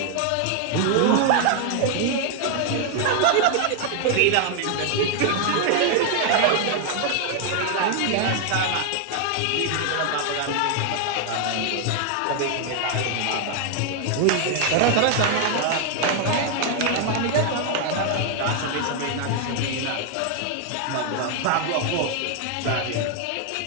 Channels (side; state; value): both; different; correlation 0.00